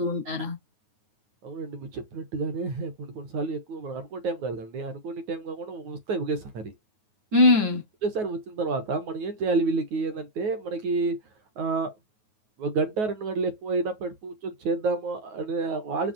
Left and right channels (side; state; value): left; late; 9.4 ms